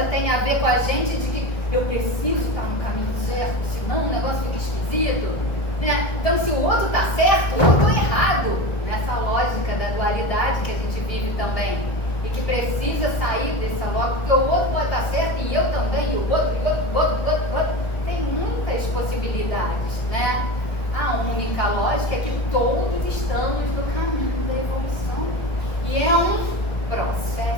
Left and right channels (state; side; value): late; right; 1.5 ms